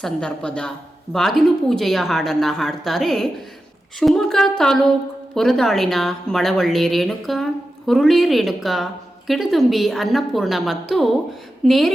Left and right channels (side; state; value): both; normal; correlation 0.91